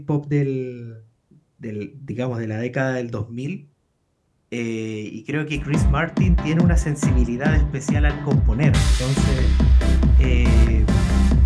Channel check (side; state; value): both; identical; correlation 1.00